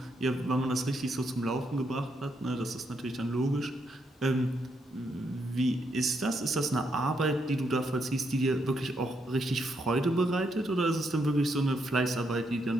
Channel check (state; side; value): normal; both; correlation 0.78